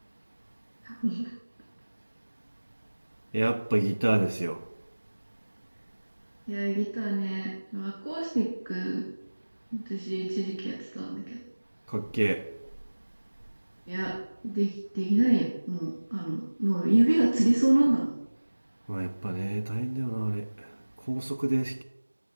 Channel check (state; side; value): inverted; both; correlation -1.00